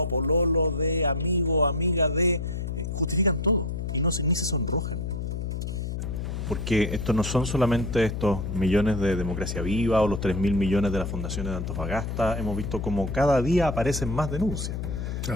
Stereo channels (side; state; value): left; noise; hum, 4 dB below the sound